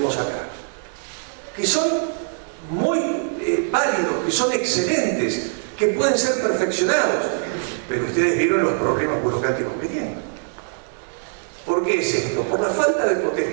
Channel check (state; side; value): silent; left; digital silence